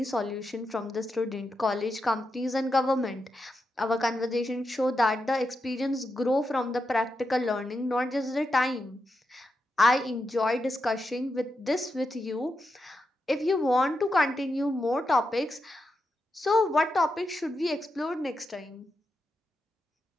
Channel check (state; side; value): normal; both; correlation 0.87